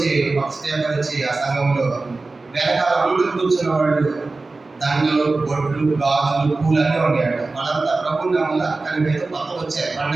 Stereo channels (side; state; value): left; quieter; 3.5 dB